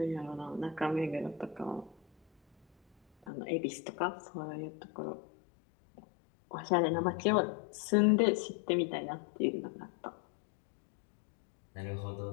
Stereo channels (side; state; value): right; drops out; at 3.3 s